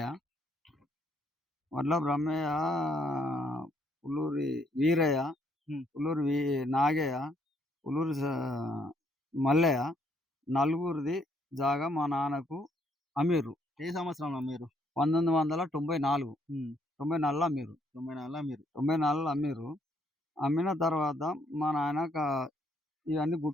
వడ్ల బ్రహ్మయ్య, పుల్లూరి వీరయ్య, హ్మ్. పుల్లూరి నాగయ్య, పుల్లూరి మల్లయ్య నలుగురిది జాగా మా నాన్నకు అమ్మిర్రు. ఏ సంవత్సరంలో మీరు? 1994 హ్మ్. 94లో అమ్మిర్రు. 94ల మీరు. 94లో అమ్మిర్రు. అమ్మిన తర్వాత మా నాయన ఇవన్నీ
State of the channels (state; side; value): normal; both; correlation 0.70